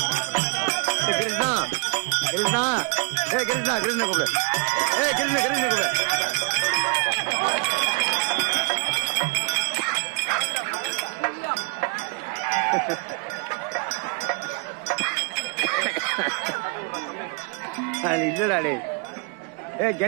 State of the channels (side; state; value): left; quieter; 33.1 dB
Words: கிருஷ்ணா கிருஷ்ணா கிருஷ்ணா கிருஷ்ண கூப்பிடு கிருஷ்ண கிருஷ்ண கூப்பிடு அது இல்லடா டே